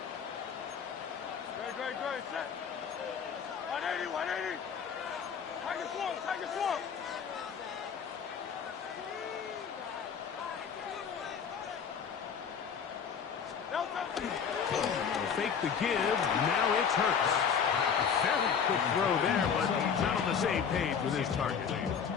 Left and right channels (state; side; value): quieter; right; 7.0 dB